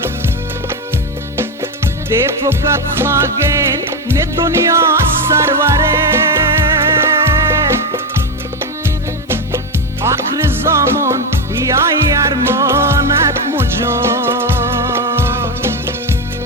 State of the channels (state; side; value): normal; both; correlation 0.12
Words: دی فقط خاگین نه دنیا سروره آخر زمان یا ارمانت مجان